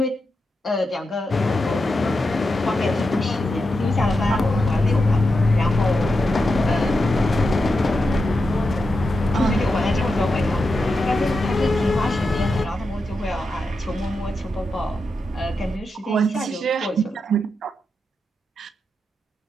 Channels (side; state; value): both; normal; correlation 0.88